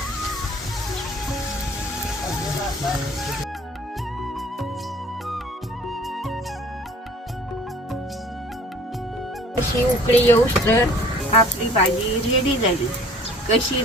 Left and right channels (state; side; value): normal; both; correlation 0.50